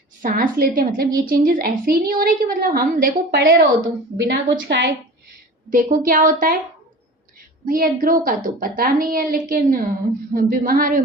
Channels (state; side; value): normal; both; correlation 0.38